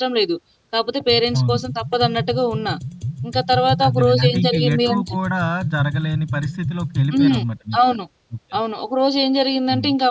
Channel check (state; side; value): identical; both; correlation 1.00